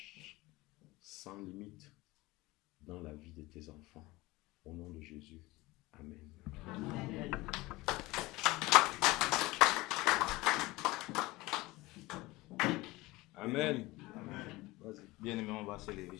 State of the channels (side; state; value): right; quieter; 20.5 dB